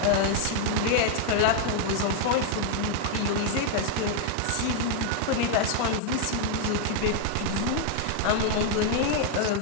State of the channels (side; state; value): both; different; correlation 0.00